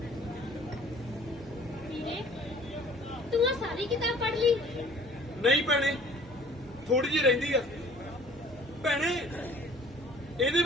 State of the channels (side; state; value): both; normal; correlation 0.52